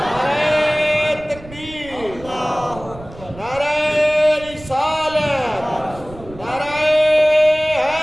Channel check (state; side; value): noise; right; rumble, 18 dB below the sound